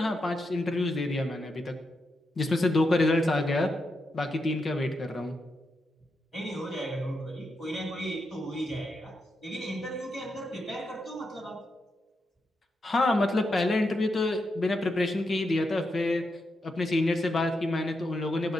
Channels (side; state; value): both; normal; correlation 0.85